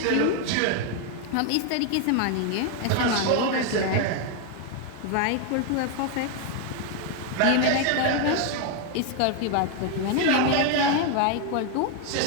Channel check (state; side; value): different; both; correlation 0.01